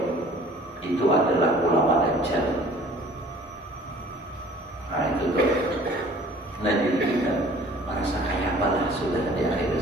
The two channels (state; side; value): normal; both; correlation 0.50